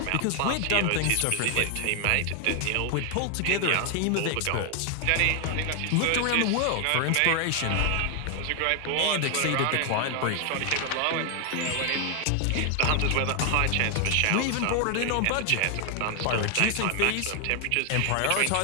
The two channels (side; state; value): both; different; correlation 0.00